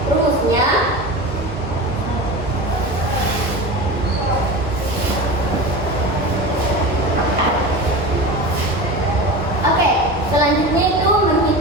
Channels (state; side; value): normal; both; correlation 0.29